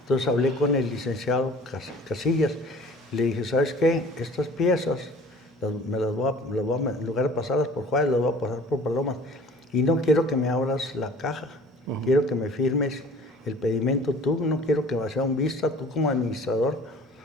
Entonces hablé con el licenciado Casillas. Le dije, ¿sabes qué? Estas piezas, en lugar de pasarlas por Juárez, las voy a pasar por Palomas. Y no quiero que me abras la caja. Quiero que me firmes el pedimento tú. No quiero que sea un vista tú como administrador,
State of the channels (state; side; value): normal; both; correlation 0.48